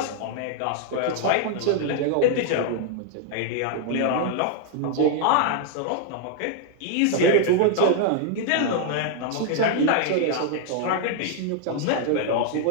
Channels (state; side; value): different; both; correlation 0.00